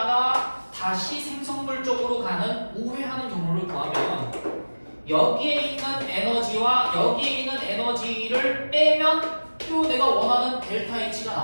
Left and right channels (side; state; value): both; inverted; correlation -1.00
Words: 다시 생성물 쪽으로 가는 우회하는 경로를 구하면 여기에 있는 에너지와 여기에 있는 에너지를 빼면 또 내가 원하는 델타 H가